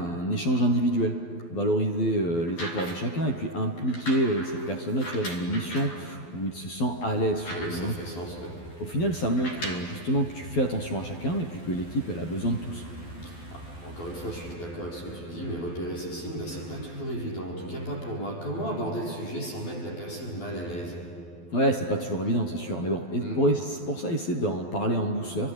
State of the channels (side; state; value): right; late; 12 ms